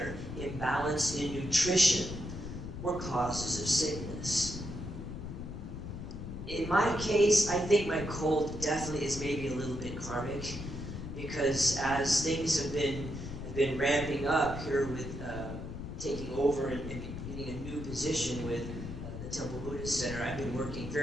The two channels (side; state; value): left; noise; rumble, 8 dB below the sound